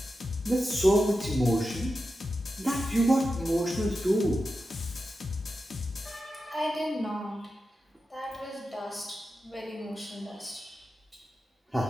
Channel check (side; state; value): both; normal; correlation 0.90